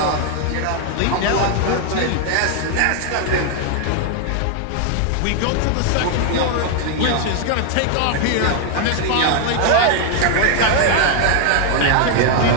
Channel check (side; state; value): both; different; correlation 0.00